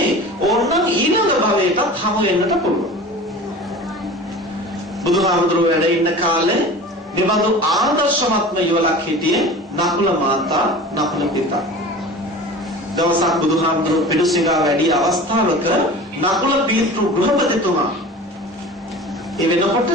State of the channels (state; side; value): normal; both; correlation 0.37